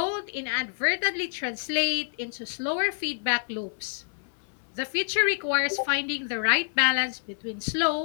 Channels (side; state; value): right; silent; 60 dB below the other